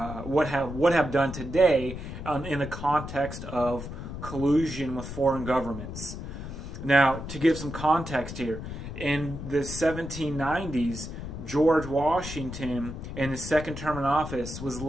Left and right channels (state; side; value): noise; left; rumble, 8 dB below the sound